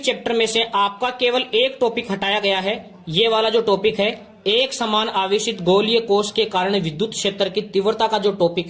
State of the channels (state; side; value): identical; both; correlation 1.00